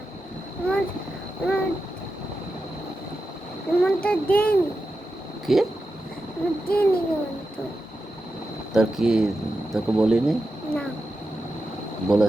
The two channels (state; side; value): normal; both; correlation 0.90